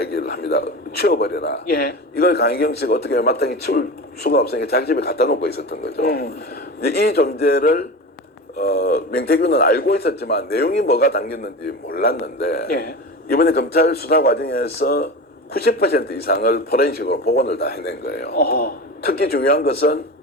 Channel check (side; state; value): both; normal; correlation 0.29